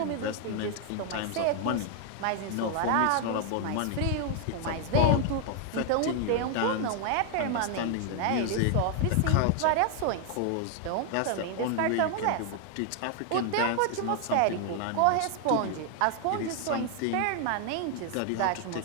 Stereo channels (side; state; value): both; different; correlation 0.00